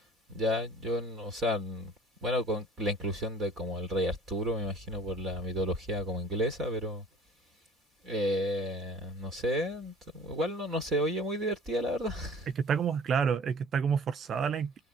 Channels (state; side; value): normal; both; correlation 0.48